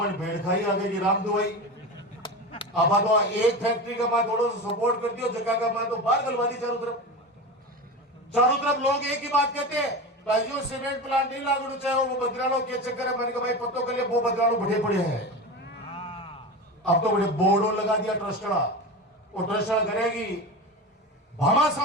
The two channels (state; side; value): normal; both; correlation 0.26